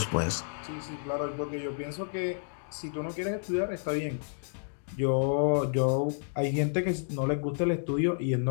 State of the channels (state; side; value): silent; right; digital silence